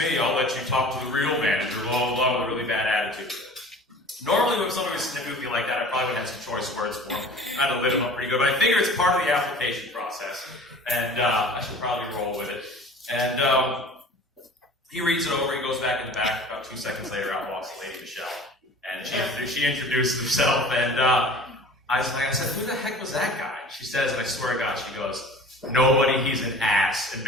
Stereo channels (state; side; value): normal; both; correlation 0.44